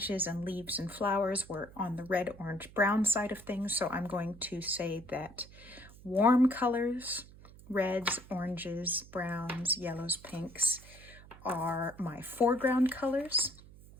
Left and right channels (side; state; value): right; noise; hum, 20 dB below the sound